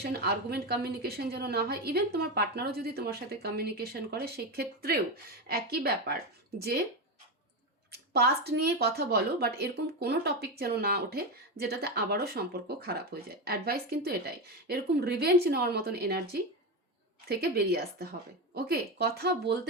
আর্গুমেন্ট কমিউনিকেশন যেন না হয়। ইভেন তোমার পার্টনারও যদি তোমার সাথে কমিউনিকেশন করে সেই ক্ষেত্রেও একই ব্যাপার, যে পাস্ট নিয়ে কথা বলো, বাট এরকম কোনো টপিক যেন না ওঠে যেটাতে আবারও সম্পর্ক খারাপ হয়ে যায়। অ্যাডভাইস কিন্তু এটাই, এরকম রিভেঞ্জ নেওয়ার মতন এনার্জি থেকে বেরিয়ে আসতে হবে। ওকে, কথা বলতে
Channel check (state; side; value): normal; both; correlation 0.14